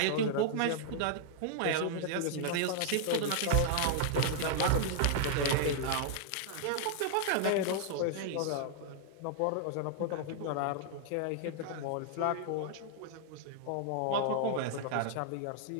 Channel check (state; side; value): different; both; correlation -0.01